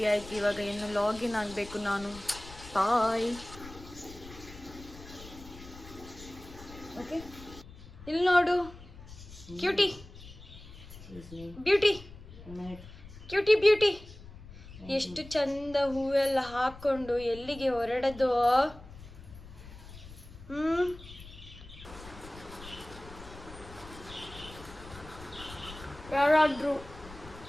ಆಯ್ತು. ಇವಾಗ ಇನ್ನು ಲಾಗಿನ್ ಆಗಬೇಕು ನಾನು. ಬಾಯ್. ಓಕೆ, ಇಲ್ಲಿ ನೋಡು ಕ್ಯೂಟಿ ಬ್ಯೂಟಿ, ಕ್ಯೂಟಿ ಬ್ಯೂಟಿ. ಎಷ್ಟು ಚಂದ ಹೂವೆಲ್ಲ ಹಾಕೊಂಡು ಎಲ್ಲಿಗೆ ಹೊರಡದು. ಯಾರಾದರೂ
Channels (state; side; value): noise; left; rumble, 16 dB below the sound